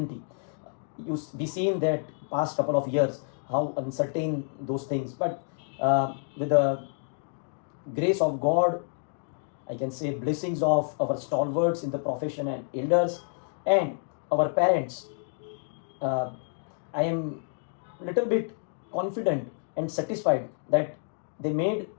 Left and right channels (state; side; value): silent; right; digital silence